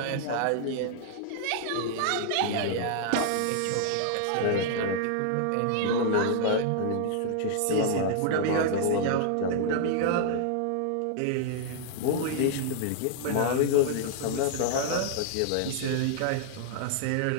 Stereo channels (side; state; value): both; different; correlation -0.01